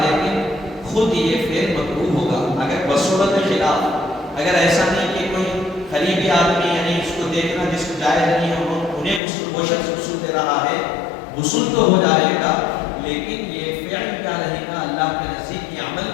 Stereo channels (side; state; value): right; drops out; at 9.2 s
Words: لیکن خود یہ فعل مکروہ ہوگا۔ اگر بصورت خلاف، اگر ایسا نہیں کہ کوئی قریبی آدمی یعنی اس کو دیکھنا جس کو جائز نہیں ہے انہیں غسل، وہ شخص غسل دے رہا ہے، غسل تو ہو جائے گا لیکن یہ فعل کیا رہے گا، اللہ کے نزدیک یہ عمل